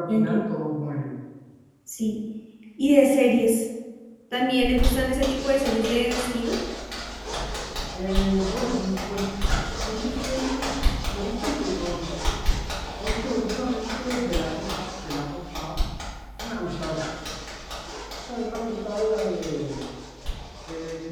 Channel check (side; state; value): both; identical; correlation 1.00